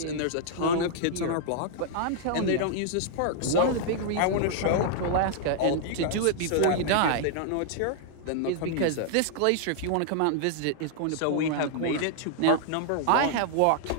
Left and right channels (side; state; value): both; different; correlation -0.01